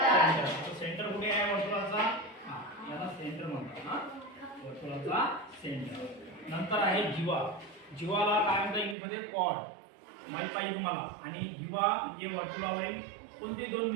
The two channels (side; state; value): left; drops out; at 9.0 s